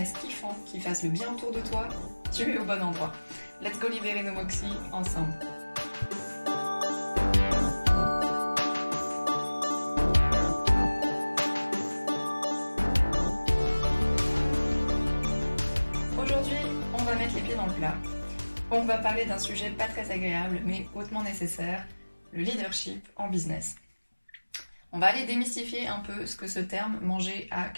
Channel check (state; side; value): inverted; both; correlation -1.00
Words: kiffant qui fasse le bien autour de toi, tu es au bon endroit. Let's go libérer nos Moxies ensemble. Aujourd'hui, on va mettre les pieds dans le plat. On va parler d'un sujet pas très agréable mais hautement nécessaire, le leadership en business. On va aller démystifier un peu ce que ce terme « manger à